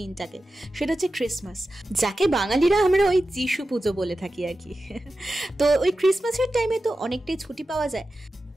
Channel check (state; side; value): normal; both; correlation 0.93